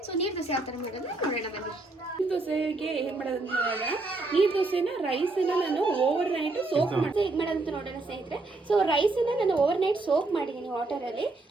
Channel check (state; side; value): quieter; left; 3.2 dB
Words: ಸೊ ನೀರು ದೋಸೆ ಯಾವ ಥರ ಮಾಡೋದು ನೋಡೋಣ ಬನ್ನಿ. ನೀರು ದೋಸೆಗೆ ಏನು ಮಾಡೋದಂತ ನೋಡೋಣ. ನೀರು ದೋಸೆನ ರೈಸನ್ನು ನಾನು ಓವರ್ ನೈಟ್ ಸೋಕ್ ಮಾಡಿ ಹೇಗೆ ಮಾಡೋದಂತ ನೋಡೋಣ ಸ್ನೇಹಿತರೆ. ಸೊ ರೈಸನ್ನು ನಾನು ಓವರ್ ನೈಟ್ ಸೋಕ್ ಮಾಡಿದ್ದೀನಿ ವಾಟರಲ್ಲಿ.